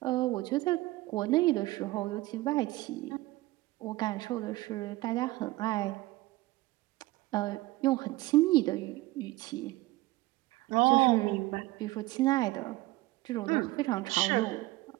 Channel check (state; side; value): quieter; left; 19.4 dB